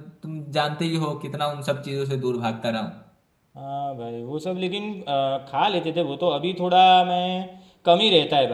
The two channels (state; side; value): identical; both; correlation 1.00